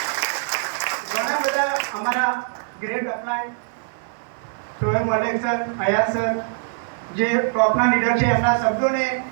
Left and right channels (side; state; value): left; silent; 57 dB below the other